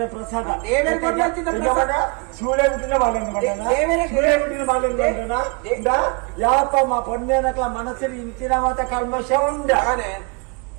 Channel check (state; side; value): quieter; left; 31.2 dB